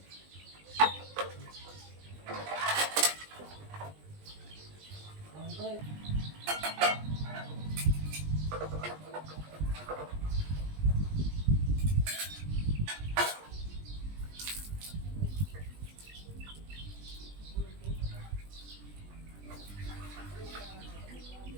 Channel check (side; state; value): left; late; 20 ms